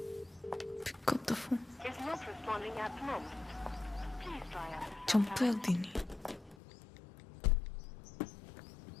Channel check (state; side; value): drops out; right; at 6.6 s